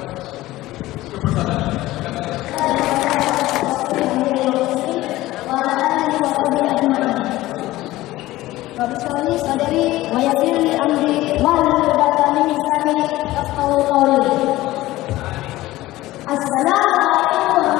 Wabillahi sadari wa yassir li amri wahlul 'uqdatam min lisani yafqahu qawli. Assalamualaikum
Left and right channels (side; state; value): right; quieter; 17.1 dB